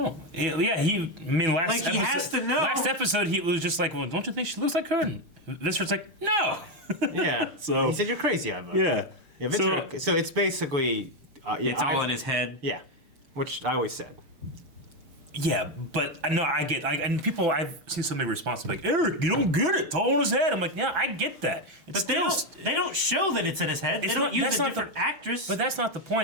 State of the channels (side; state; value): left; late; 6.5 ms